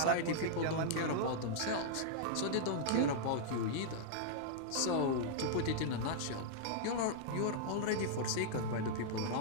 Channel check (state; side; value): different; both; correlation -0.01